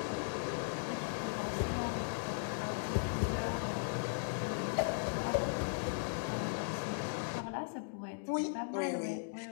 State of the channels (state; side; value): silent; right; digital silence